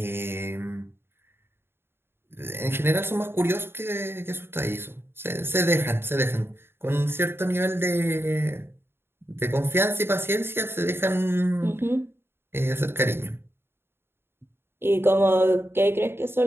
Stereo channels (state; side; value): late; left; 0.11 ms